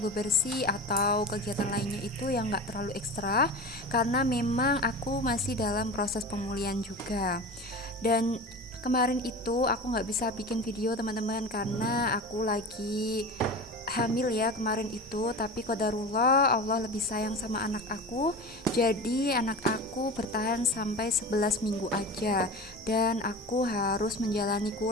bebersih atau kegiatan lainnya itu yang gak terlalu ekstra, karena memang aku masih dalam proses pemulihan juga. Dan kemarin itu aku gak bisa bikin video teman-teman karena aku lagi hamil ya kemarin itu, tapi qadarullah Allah lebih sayang sama anak aku, jadi anak aku bertahan sampai 11 minggu aja, dan aku harus menjalani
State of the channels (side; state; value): both; normal; correlation 0.31